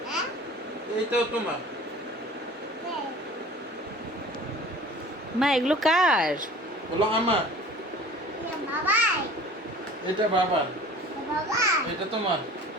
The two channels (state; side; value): normal; both; correlation 0.44